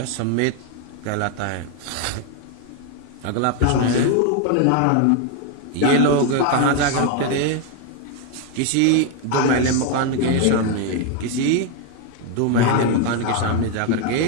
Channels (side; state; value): both; different; correlation 0.01